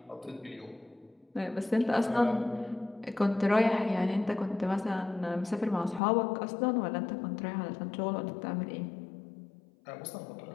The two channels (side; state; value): right; drops out; at 6.0 s